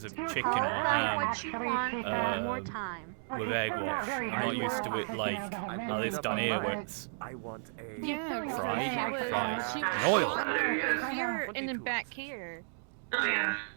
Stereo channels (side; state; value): left; silent; digital silence